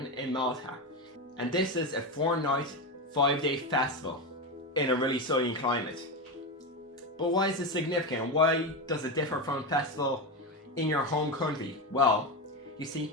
in Malta. And this is a 4-night, 5-day festival in a really sunny climate. But why is this significant? Why does it differ from a festival in your home country? Well, you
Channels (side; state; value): both; normal; correlation 0.15